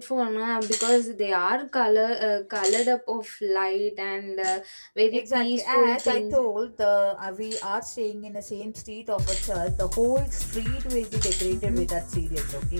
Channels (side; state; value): both; inverted; correlation -1.00